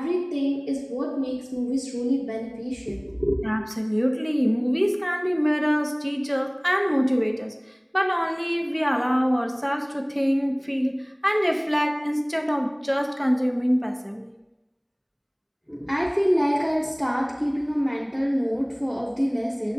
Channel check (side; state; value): both; identical; correlation 1.00